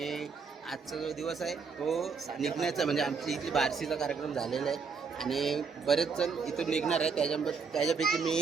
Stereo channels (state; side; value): quieter; left; 5.4 dB